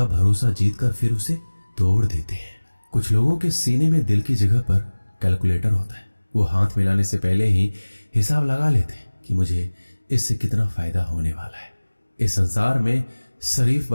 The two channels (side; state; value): both; inverted; correlation -1.00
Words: भरोसा जीतकर फिर उसे तोड़ देते हैं। कुछ लोगों के सीने में दिल की जगह पर कैलकुलेटर होता है। वो हाथ मिलाने से पहले ही हिसाब लगा लेते हैं कि मुझे इससे कितना फायदा होने वाला है। इस संसार में शरीफ